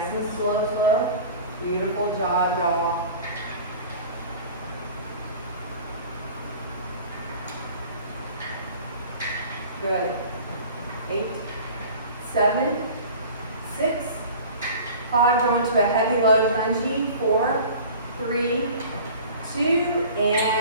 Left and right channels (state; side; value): inverted; both; correlation -0.42